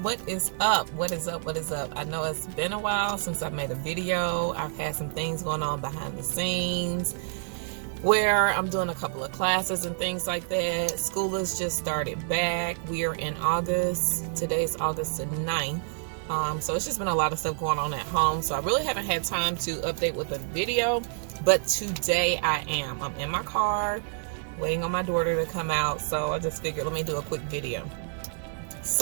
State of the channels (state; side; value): silent; left; digital silence